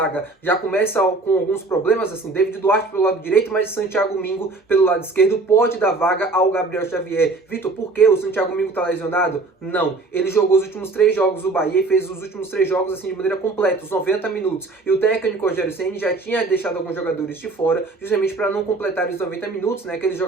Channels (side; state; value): left; quieter; 3.4 dB